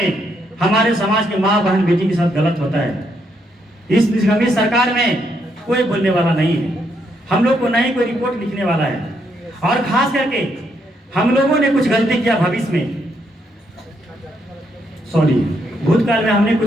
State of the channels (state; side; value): normal; both; correlation 0.76